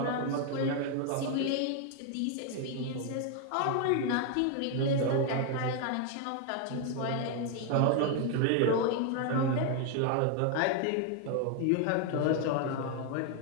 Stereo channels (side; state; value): both; different; correlation 0.01